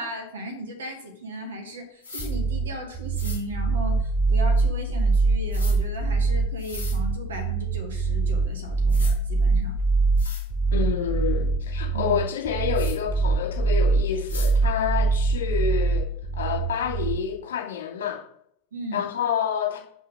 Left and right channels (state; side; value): normal; both; correlation 0.51